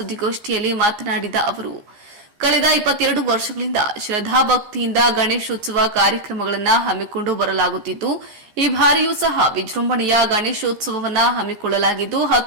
ಮಾತನಾಡಿದ ಅವರು, ಕಳೆದ 22 ವರ್ಷಗಳಿಂದ ಶ್ರದ್ಧಾಭಕ್ತಿಯಿಂದ ಗಣೇಶೋತ್ಸವ ಕಾರ್ಯಕ್ರಮಗಳನ್ನು ಹಮ್ಮಿಕೊಂಡು ಬರಲಾಗುತ್ತಿದ್ದು, ಈ ಬಾರಿಯೂ ಸಹ ವಿಜೃಂಭಣೆಯ ಗಣೇಶೋತ್ಸವವನ್ನು ಹಮ್ಮಿಕೊಳ್ಳಲಾಗಿದ್ದು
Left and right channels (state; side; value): late; left; 14 ms